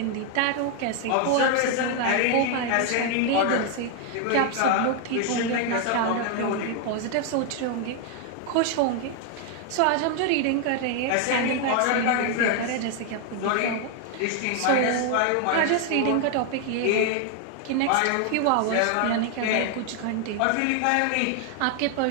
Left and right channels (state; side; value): different; both; correlation 0.00